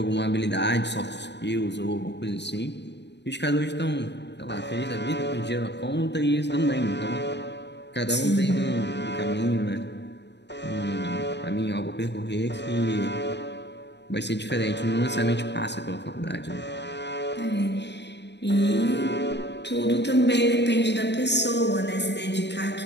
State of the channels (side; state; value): right; late; 0.50 ms